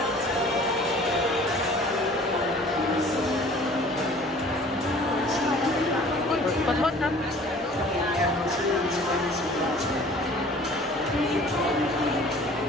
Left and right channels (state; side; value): normal; both; correlation 0.49